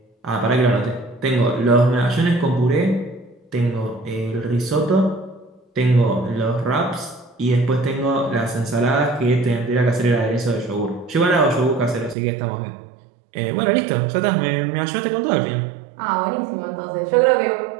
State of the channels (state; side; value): drops out; left; at 12.2 s